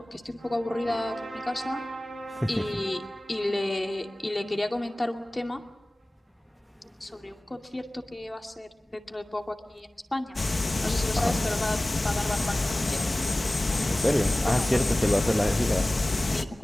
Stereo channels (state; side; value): normal; both; correlation 0.98